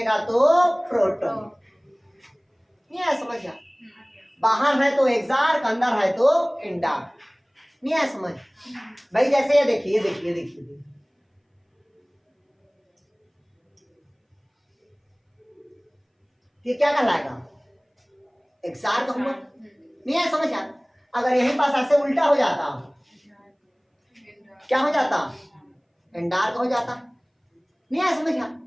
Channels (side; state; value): both; identical; correlation 1.00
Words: तो प्रोटो। नहीं है समझ? बाहर है तो एक्सार्क, अंदर है तो इंडार्क। नहीं है समझ भाई? जैसे ये देखिए, देखिए देखिए, ये क्या कहलाएगा? एक्सार्क हुआ। नहीं है समझ? अगर यहीं पास ऐसे उल्टा हो जाता क्या हो जाता? इंडार्क हो जाता। नहीं है समझ?